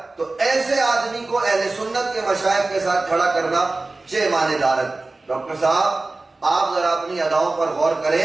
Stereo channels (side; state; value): left; quieter; 3.3 dB